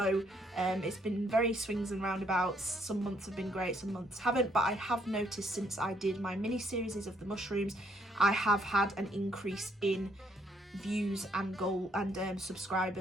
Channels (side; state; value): both; normal; correlation 0.70